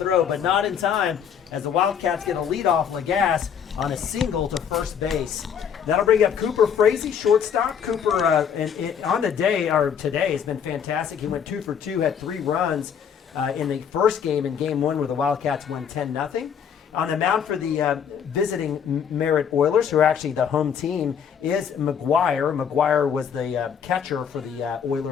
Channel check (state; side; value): quieter; right; 7.8 dB